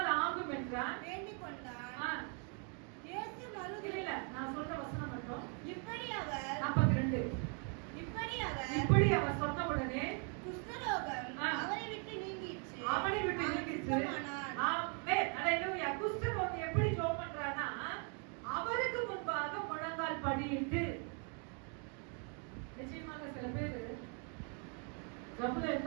ஆகும் என்றான். வேண்டிக் கொண்டான். இயேசு இல்ல நான் சொல்ற வசனம் மட்டும். இப்படி அவர் 42 இப்படி அவர் சொன்ன உடனே குஷ்டரோகம் அவரை விட்டு நீங்கிச்சு. ஆமென். ஹalleluya. குஷ்டரோகம் எப்படி ஜெபம் பண்றானா அவருக்கு முன்பாக முழங்கால் படியிட்டு. நிச்சயமாக சில பேர் ஜபுல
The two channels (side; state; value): left; quieter; 39.3 dB